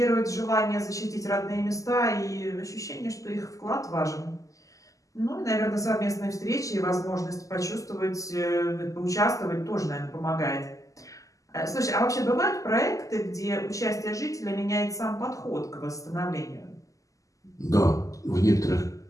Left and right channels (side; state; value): right; late; 0.16 ms